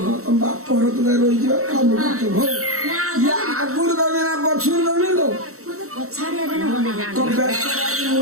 ହଁ ତମ ବାପ ଘର ତ ଯାଇ ରହିଯିବ କାମ କରୁଥିବ ହଉ ନା ଇଏ ଆଗରୁ ଦେବି ନା ପଛରୁ ଦେବି ତ ମତେ ପଛାଡିଆ ଦେଲେ ଭଲ ତ ବେକର ଆଜି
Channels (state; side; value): late; left; 0.64 ms